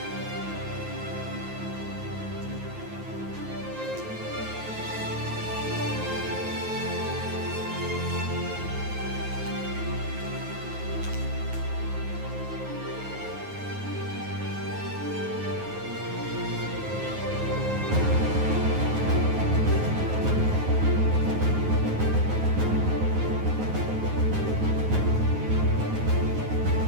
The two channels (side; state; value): left; late; 9.4 ms